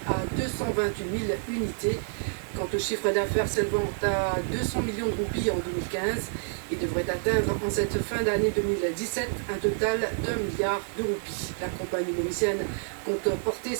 à 228 000 unités. Quant au chiffre d'affaires s'élevant à 200 millions de roupies en 2015, il devrait atteindre en cette fin d'année 2017 un total d'1 milliard de roupies. La compagnie mauricienne compte porter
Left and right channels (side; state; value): left; silent; 59 dB below the other